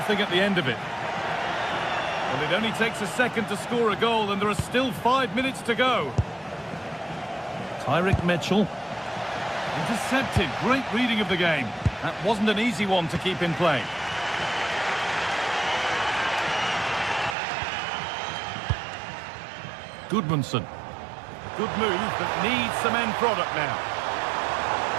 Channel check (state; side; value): drops out; left; at 17.4 s